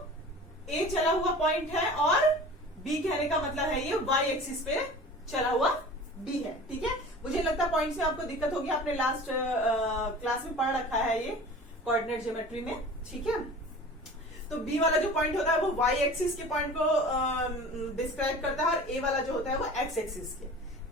ए चला हुआ पॉइंट है, और बी कहने का मतलब है ये वाई एक्सिस पे चला हुआ बी है। ठीक है, मुझे लगता है पॉइंट्स में आपको दिक्कत होगी, आपने लास्ट क्लास में पढ़ रखा है ये कोऑर्डिनेट ज्योमेट्री में। ठीक है, तो बी वाला जो पॉइंट होता है वो वाई एक्सिस के पॉइंट को डिस्क्राइब करता है, और ए वाला जो होता है वो एक्स एक्सिस के।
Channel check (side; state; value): both; normal; correlation 0.40